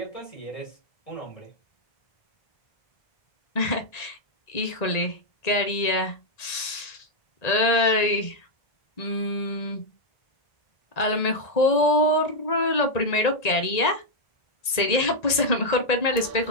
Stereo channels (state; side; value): late; right; 1.8 ms